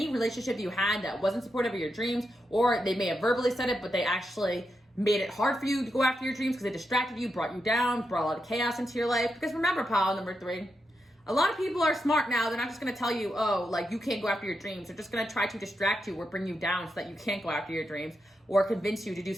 relationship you had that wasn't supportive of your dreams, or they may have verbally said it, but they actually made it hard for you to go after your dreams because they distracted you, brought you down, brought a lot of chaos into your life. Because remember, pile number 3, a lot of people are smart now. They're not just going to tell you, oh, like you can't go after your dreams. They're just going to try to distract you or bring you down so that you can't go after your dreams or convince you to do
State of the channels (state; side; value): normal; both; correlation 0.85